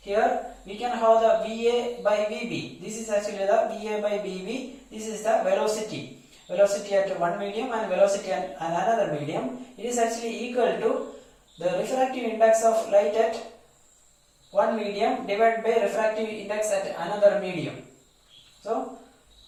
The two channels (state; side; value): identical; both; correlation 1.00